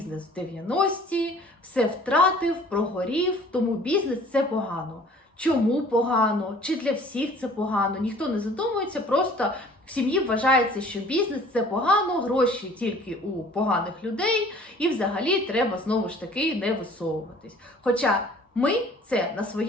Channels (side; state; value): both; normal; correlation 0.51